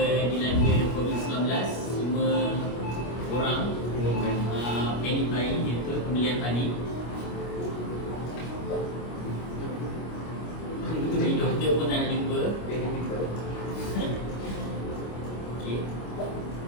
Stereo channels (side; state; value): right; late; 25 ms